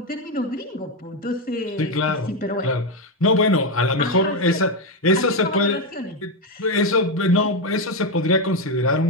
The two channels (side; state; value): both; normal; correlation 0.08